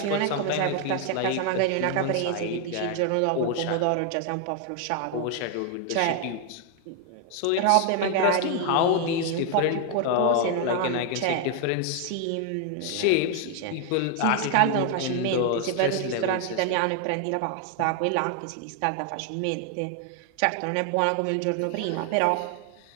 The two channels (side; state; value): both; different; correlation 0.00